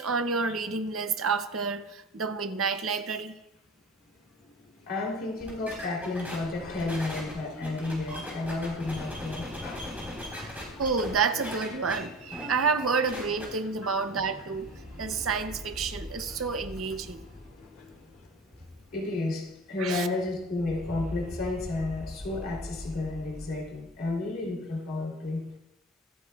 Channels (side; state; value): both; normal; correlation 0.36